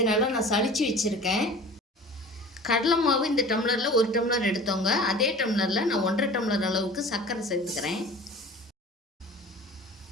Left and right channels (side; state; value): both; normal; correlation 0.41